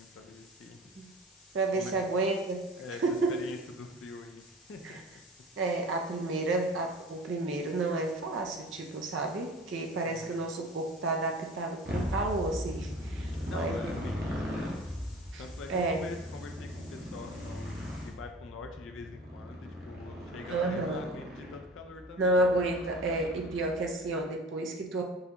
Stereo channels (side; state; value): both; normal; correlation 0.40